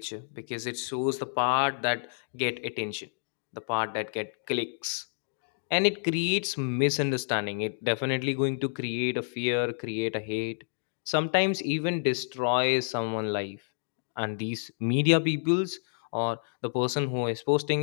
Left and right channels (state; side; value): silent; right; digital silence